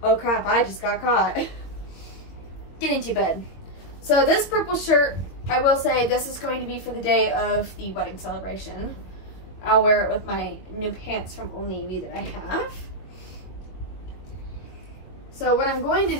oh crap, I just got caught. Get into bed. So this purple shirt, I will say this is going to be for the day of the wedding celebration. I'll wear it with my new pants from Old Navy that I have. So what I'm going to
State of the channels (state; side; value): late; right; 22 ms